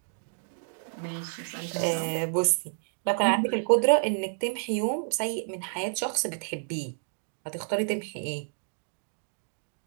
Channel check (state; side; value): silent; left; digital silence